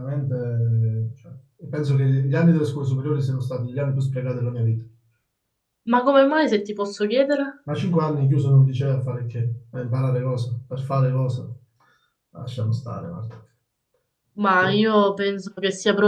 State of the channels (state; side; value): identical; both; correlation 1.00